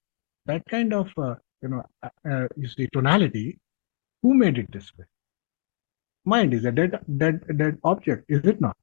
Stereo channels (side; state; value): right; silent; digital silence